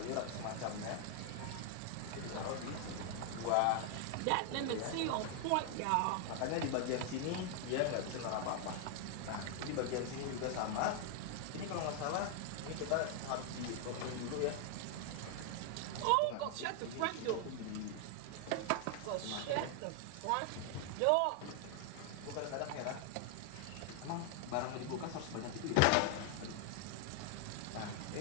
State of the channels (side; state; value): both; different; correlation 0.00